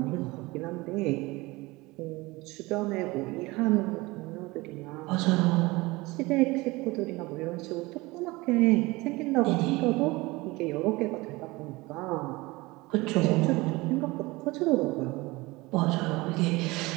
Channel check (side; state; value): left; quieter; 22.1 dB